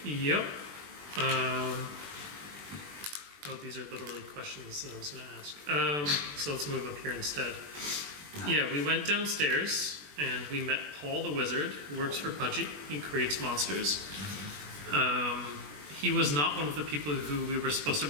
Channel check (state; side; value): late; left; 21 ms